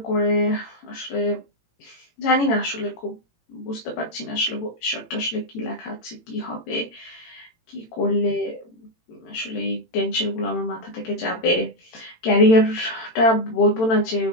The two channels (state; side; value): late; right; 18 ms